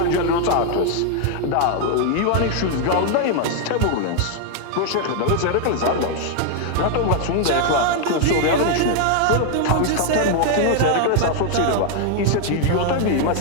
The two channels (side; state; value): both; different; correlation 0.00